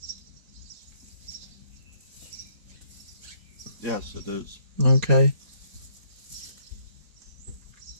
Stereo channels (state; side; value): late; left; 4.1 ms